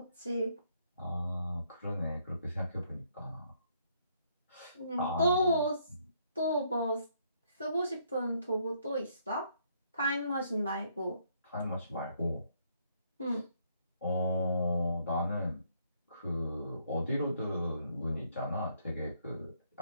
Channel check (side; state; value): both; inverted; correlation -0.70